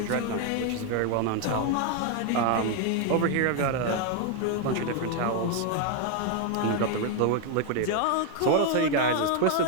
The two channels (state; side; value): different; both; correlation 0.01